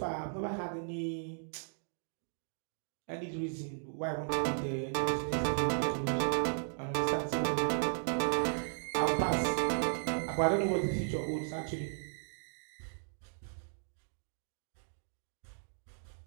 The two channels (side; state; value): left; silent; digital silence